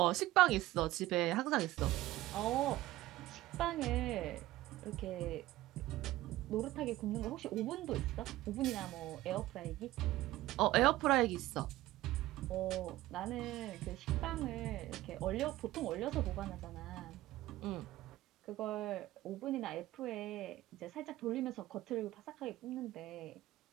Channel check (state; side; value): quieter; left; 16.5 dB